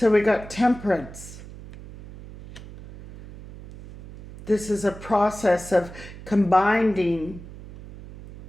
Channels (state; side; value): noise; right; hum, 16 dB below the sound